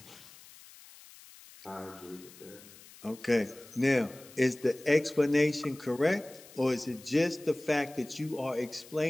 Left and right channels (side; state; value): left; noise; hiss, 21 dB below the sound